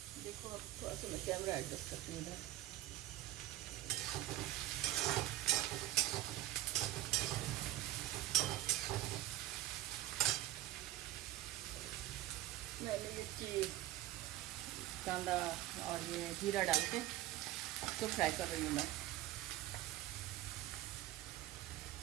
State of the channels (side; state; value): left; quieter; 15.1 dB